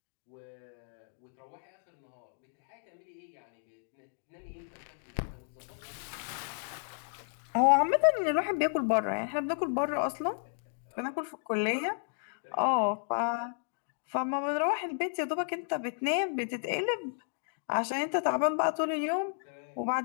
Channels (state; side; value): silent; right; digital silence